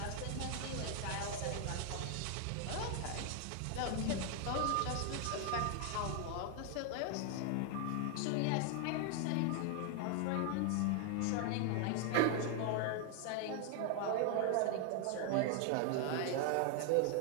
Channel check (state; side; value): different; both; correlation 0.00